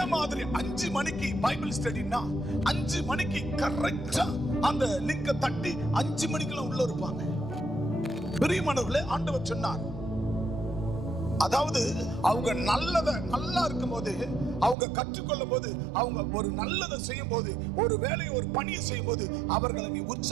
மாதிரி 5 மணிக்கு பைபிள் ஸ்டடினா 5 மணிக்கு கரெக்டா அந்த லிங்க தட்டி 5 மணிக்குள்ள உள்ள இருப்பாங்க. பிரியமானவர்களே, ஆண்டவர் சொன்னார், அதாவது அவங்க நல்லா இருக்கும் போது, அவங்க கற்றுக்கொள்ளும் போது, அவங்க ஒரு நல்லதை செய்யும் போது, ஒரு வேலையை, ஒரு பணியை செய்யும் போது அவர்களை நீ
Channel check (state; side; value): drops out; left; at 14.8 s